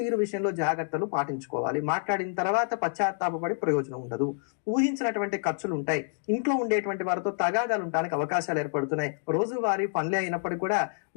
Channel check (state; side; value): silent; right; digital silence